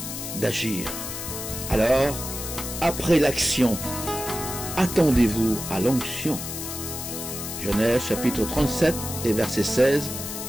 d'agir. Alors, après l'action, attendez-vous à l'onction. Genèse chapitre 37 et verset 16.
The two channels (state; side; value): noise; left; hiss, 7 dB below the sound